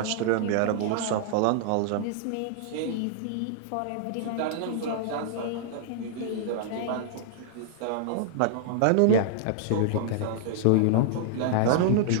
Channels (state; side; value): different; both; correlation -0.01